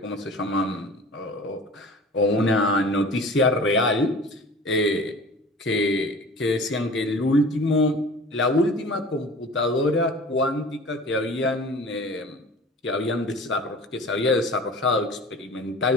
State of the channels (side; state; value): both; normal; correlation 0.42